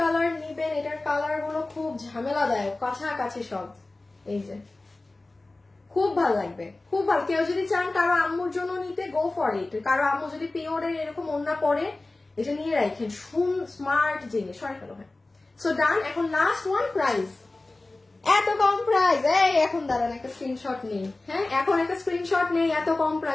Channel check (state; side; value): quieter; right; 3.1 dB